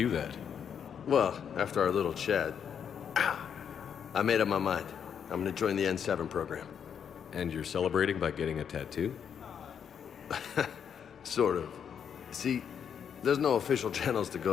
that. Well, after our little chat, I made up my mind. I'm gonna join the N7 program. And you're celebrating by getting a tattoo? Sort of. See, there's no official channels to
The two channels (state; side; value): quieter; right; 7.8 dB